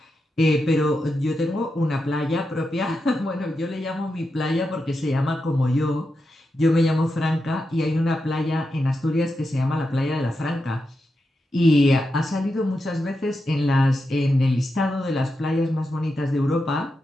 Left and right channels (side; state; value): both; normal; correlation 0.88